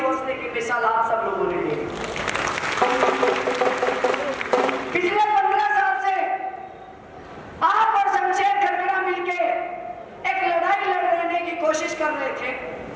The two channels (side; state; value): both; identical; correlation 1.00